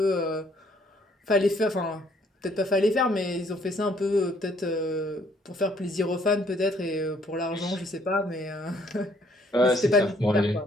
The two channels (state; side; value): normal; both; correlation 0.64